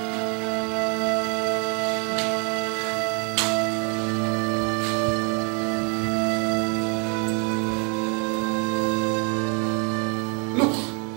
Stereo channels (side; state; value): left; quieter; 35.6 dB